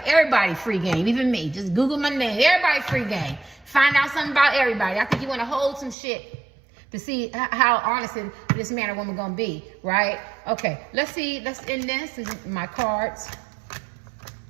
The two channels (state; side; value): drops out; left; at 6.0 s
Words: free game, even me. Just Google my name. Everybody free game. Find out something about everybody. I think you want to hold some shit to see how honest this man or woman gonna be, right? Okay, let's see. Let's end this. This is my cards.